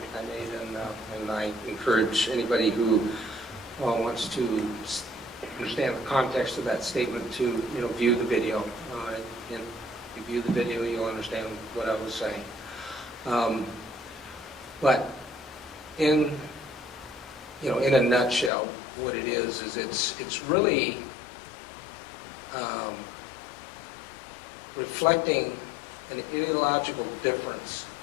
I made, and I encourage anybody who wants to understand the context of that statement to view the video. And if you view the video, you'll understand what I was saying. But in a nutshell, what it is it's really reflecting an ideological difference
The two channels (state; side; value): drops out; right; at 18.5 s